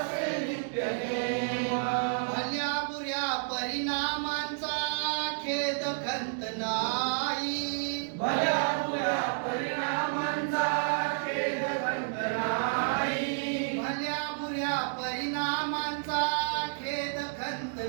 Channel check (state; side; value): silent; left; digital silence